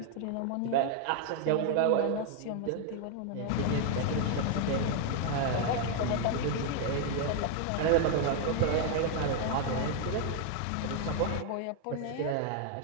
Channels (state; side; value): different; both; correlation 0.00